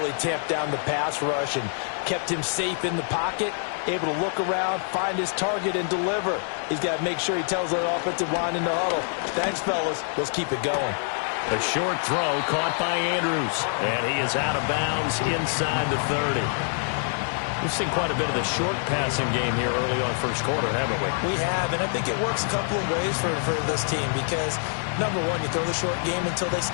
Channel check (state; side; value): silent; right; 61 dB below the other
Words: tamped down the pass rush and kept him safe in the pocket, able to look around, find his target, and deliver. He's got to make sure he tells that offensive line in the huddle, thanks, fellas. Let's keep it going. A short throw caught by Andrews. And he is out of bounds inside the 30. We've seen quite a bit of the short passing game here early on first quarter, haven't we? We have, and I think it works a couple of ways for this team because, number one, you throw the short game until they